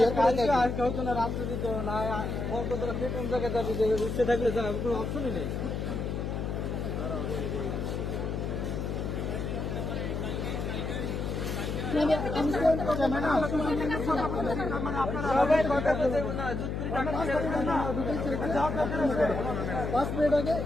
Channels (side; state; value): left; noise; hum, 3 dB below the sound